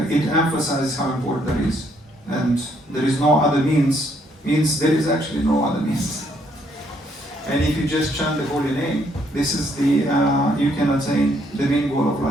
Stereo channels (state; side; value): normal; both; correlation 0.70